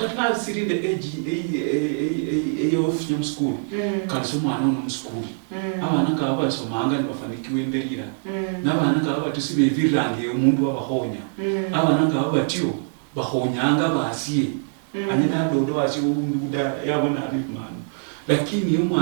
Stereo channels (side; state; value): left; silent; digital silence